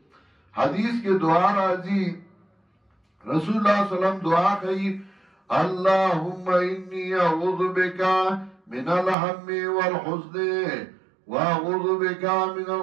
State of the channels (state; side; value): drops out; left; at 9.2 s